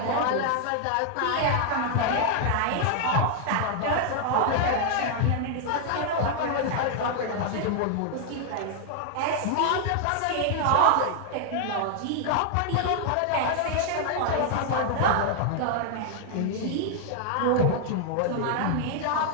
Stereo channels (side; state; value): both; different; correlation 0.00